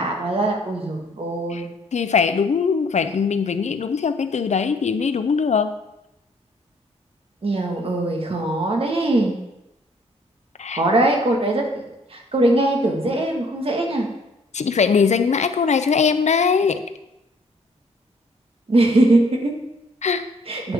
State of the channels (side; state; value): both; normal; correlation 0.61